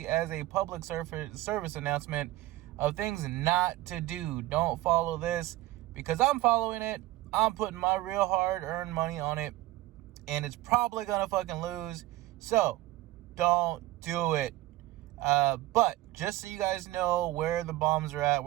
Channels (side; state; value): left; quieter; 17.2 dB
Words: as a public service announcement of things not to do. Don't follow this because I'm following it. I'm putting my real hard-earned money on it, and it's probably gonna fucking lose. So don't do it. But just so you guys know where the bombs are at,